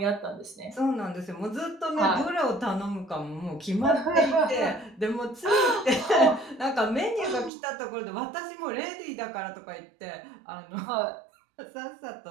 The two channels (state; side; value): drops out; left; at 7.5 s